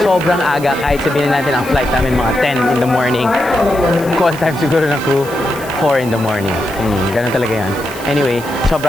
sobrang aga. Kahit sabihin natin ang flight namin mga 10 in the morning. Call time siguro ng crew, 4 in the morning. Ganun talaga yan. Anyway,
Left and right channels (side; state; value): left; noise; hiss, 18 dB below the sound